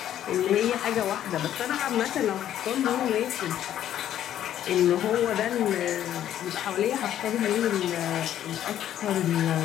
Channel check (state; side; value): quieter; right; 11.2 dB